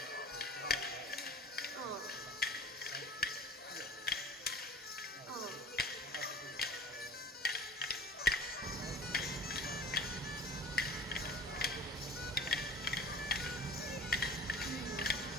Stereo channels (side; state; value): both; normal; correlation 0.43